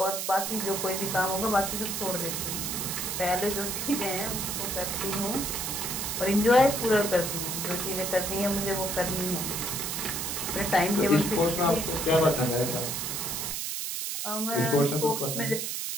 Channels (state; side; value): noise; right; hiss, 3 dB below the sound